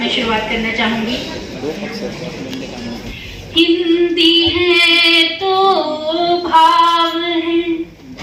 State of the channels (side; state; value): both; identical; correlation 1.00